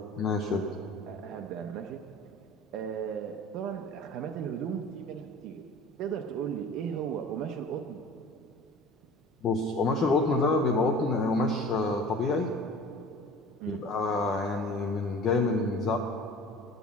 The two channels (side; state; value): both; normal; correlation 0.42